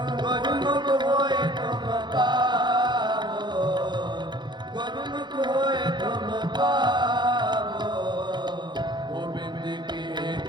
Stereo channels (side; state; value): left; late; 0.21 ms